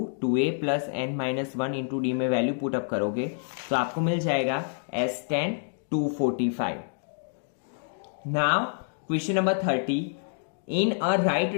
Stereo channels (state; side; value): silent; right; digital silence